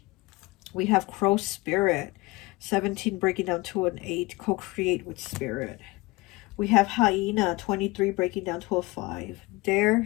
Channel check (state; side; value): quieter; right; 22.7 dB